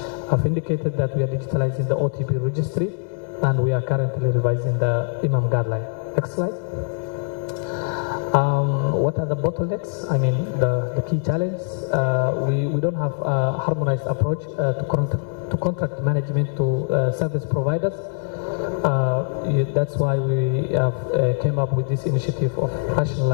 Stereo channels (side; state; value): right; silent; digital silence